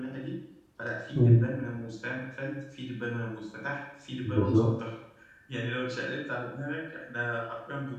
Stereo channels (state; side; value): identical; both; correlation 1.00